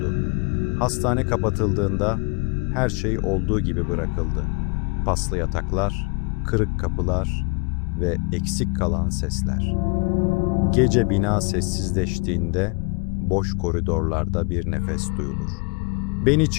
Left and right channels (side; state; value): right; quieter; 30.8 dB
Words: Hastane kapatıldığında her şey olduğu gibi bırakıldı. Paslı yataklar, kırık kapılar ve eksik kalan sesler. Gece bina sessizleştiğinde boş koridorlarda bir nefes duyulur. Beni